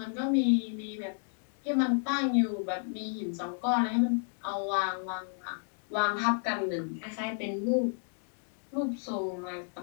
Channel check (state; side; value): silent; right; 57 dB below the other